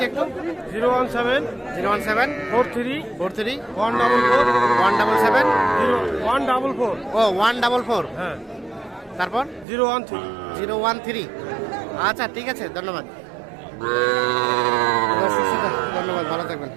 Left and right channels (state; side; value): drops out; left; at 9.7 s